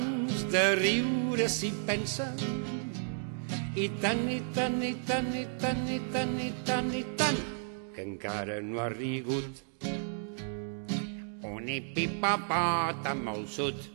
de riure s'hi pensa, i tant, i tant, i tant, i tant, i tant, i tant, i tant, que encara no ha rigut. Un hipopòtam molt sud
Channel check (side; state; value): left; silent; digital silence